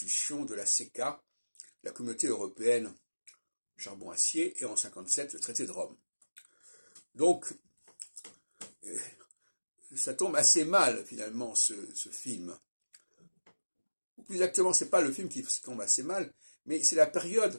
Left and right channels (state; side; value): inverted; both; correlation -1.00